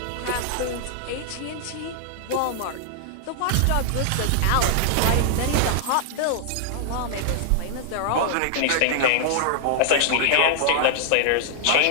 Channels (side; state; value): both; different; correlation -0.01